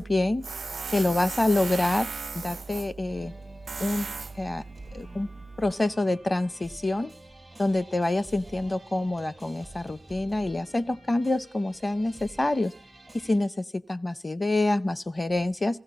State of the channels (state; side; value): normal; both; correlation 0.97